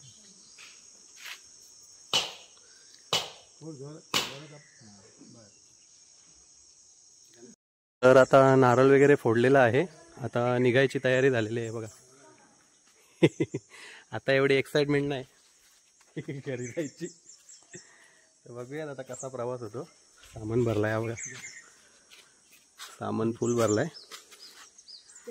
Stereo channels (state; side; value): identical; both; correlation 1.00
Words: तर आता नारळ वगैरे फोडलेला आहे, आता निघायची तयारी झालेली आहे बघा। आता एवढी एक्साइटमेंट नाही घरी जायची। तर बघूयात आता कसा प्रवास होतो। सामान भरलाय हा बघा, सामान फुल भरलाय।